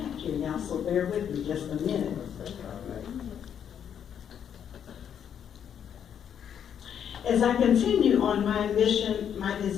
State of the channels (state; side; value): quieter; right; 8.7 dB